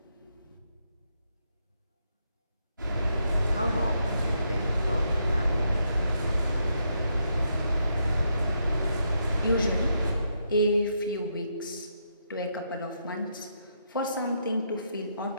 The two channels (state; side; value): inverted; both; correlation -0.79